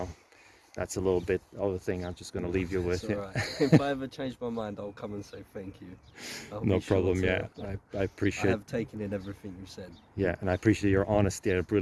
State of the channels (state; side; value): identical; both; correlation 1.00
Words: that's a little bit of the thing I'm just going to leave you with. It's all right. If I ever change my mind, I'll come and say thank you. No problem. Yeah, I appreciate. I have taken in everything you said. Yeah, and I appreciate your honesty. I